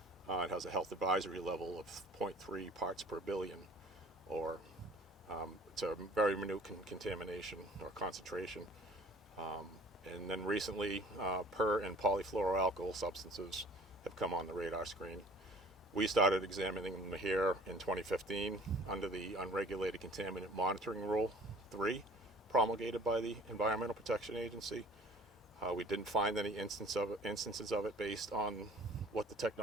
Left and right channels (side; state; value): both; normal; correlation 0.49